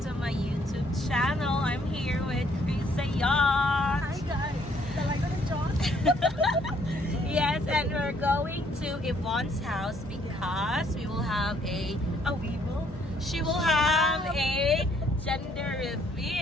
my YouTube channel. I'm here with Krisa Yacht. Hi guys! Talaga na John? Yes, and we're going to Yvonne's house because we will have she will have a gender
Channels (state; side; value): normal; both; correlation 0.66